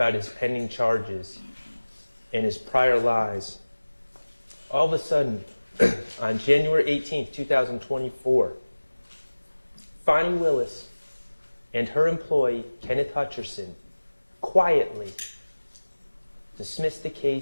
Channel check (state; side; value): inverted; both; correlation -1.00